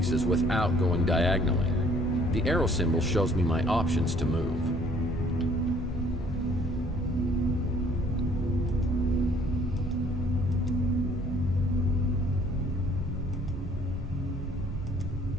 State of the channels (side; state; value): both; normal; correlation 0.58